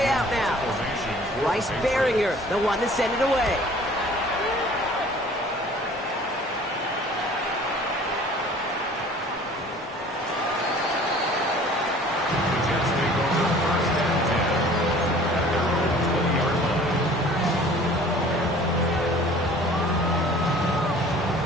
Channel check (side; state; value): both; normal; correlation 0.49